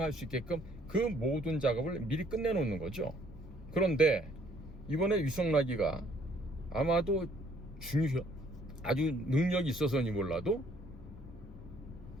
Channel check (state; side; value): normal; both; correlation 0.63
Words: 수 있게끔 그 모든 작업을 미리 끝내 놓는 거죠. 그런데 이번에 위성라기가 아마도 아주 능력이 있어서니 몰라도